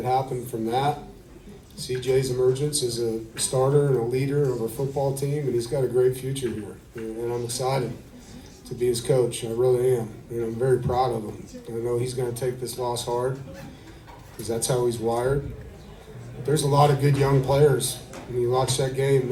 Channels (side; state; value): both; identical; correlation 1.00